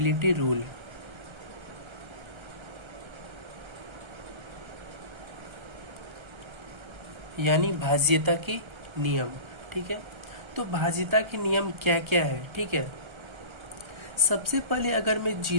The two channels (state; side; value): late; left; 1.3 ms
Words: रूल, यानी भाज्यता के नियम, ठीक है। तो भाज्यता के नियम क्या क्या है, ठीक है। सबसे पहले अगर मैं